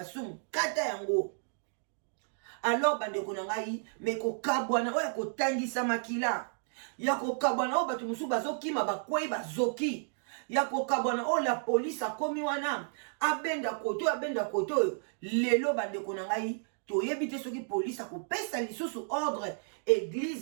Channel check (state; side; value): silent; left; digital silence